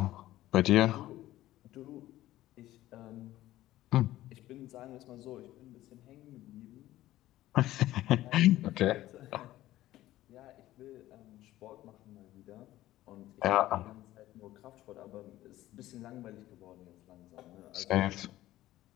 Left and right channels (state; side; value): quieter; right; 15.2 dB